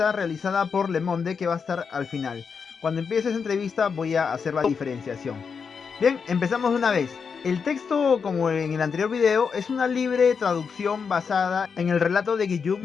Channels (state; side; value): quieter; right; 5.9 dB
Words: realizada por Le Monde que va a estar al final. Cuando empiece esa entrevista voy a hacer la diferenciación. Bien, empezamos de una vez. El texto, como en el anterior video, es una libre traducción basada en el relato de